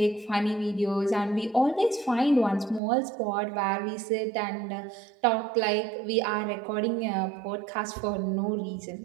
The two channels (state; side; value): drops out; left; at 2.8 s